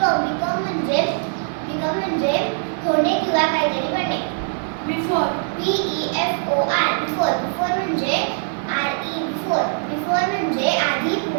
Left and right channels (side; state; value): left; silent; digital silence